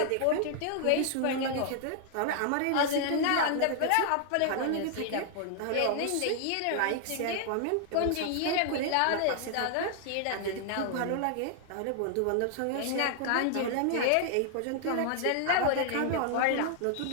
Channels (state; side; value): different; both; correlation 0.00